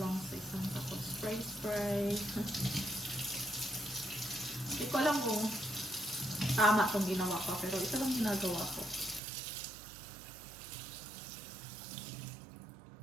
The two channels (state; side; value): drops out; left; at 9.2 s